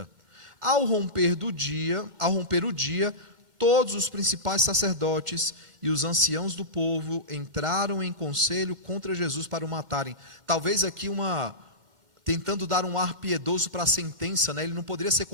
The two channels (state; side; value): late; left; 1.4 ms